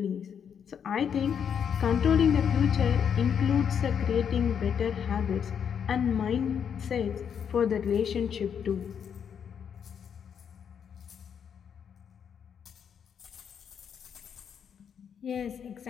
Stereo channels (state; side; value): quieter; right; 7.7 dB